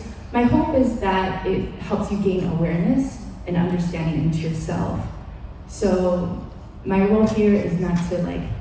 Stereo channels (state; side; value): identical; both; correlation 1.00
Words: My hope is that it helps you gain awareness and understanding into yourself. So my role here is not to